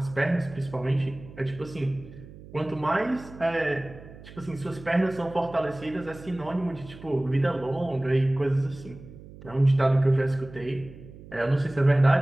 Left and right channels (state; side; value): noise; right; hum, 18 dB below the sound